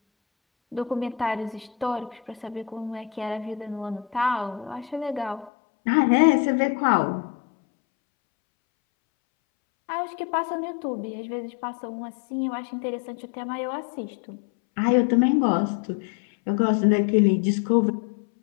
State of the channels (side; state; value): right; drops out; at 5.5 s